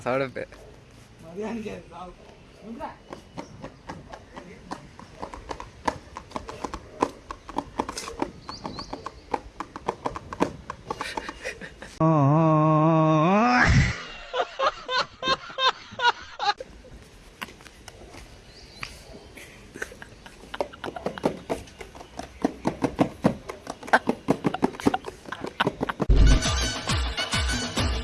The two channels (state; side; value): identical; both; correlation 1.00